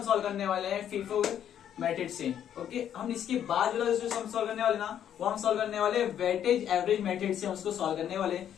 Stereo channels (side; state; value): right; quieter; 9.8 dB